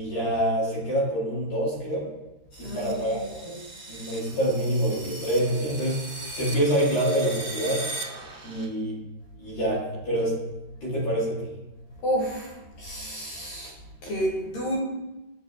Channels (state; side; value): late; right; 13 ms